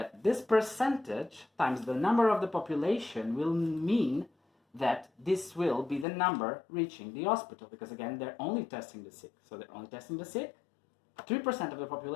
this percentage times the number of the population will mean that this will be the number reaching the hospital, because again, they're only testing the sick. So they're only testing the sick. 3% of the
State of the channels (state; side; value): drops out; right; at 6.1 s